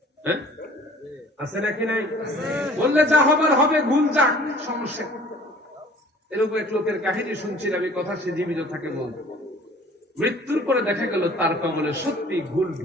হ্যাঁ আছে নাকি নাই বললে যা হবার হবে ভুল যাক সমস্যা এরকম এক লোকের কাহিনী শুনছিলাম এই কথা সে জীবিত থাকে বল মৃত্যুর পরে দেখা গেল তার কবলে সত্যি ভুল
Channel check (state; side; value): normal; both; correlation 0.50